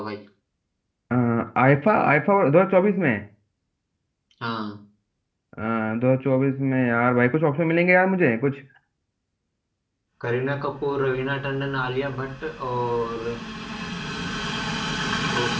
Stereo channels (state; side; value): identical; both; correlation 1.00